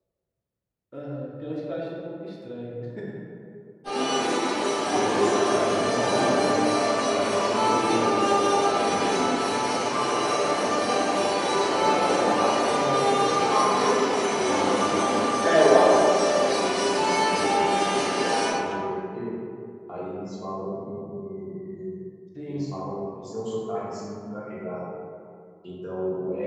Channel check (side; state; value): both; identical; correlation 1.00